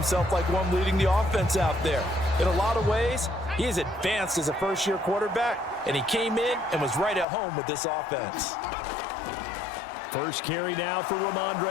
like one leading the offense out there. In a lot of ways, he is advanced as a first-year quarterback, and he came in and was right at home with this offense. First carry now for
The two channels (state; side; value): drops out; right; at 7.2 s